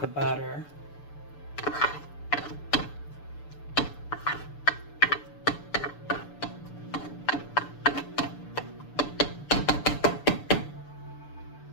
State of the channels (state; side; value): late; right; 6.8 ms